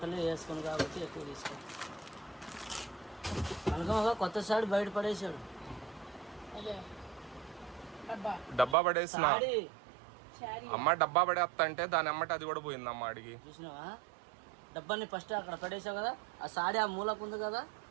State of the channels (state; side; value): drops out; left; at 8.8 s